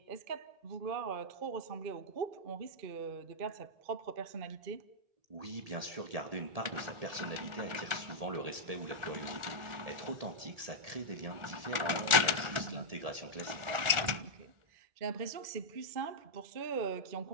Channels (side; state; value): left; late; 1.4 ms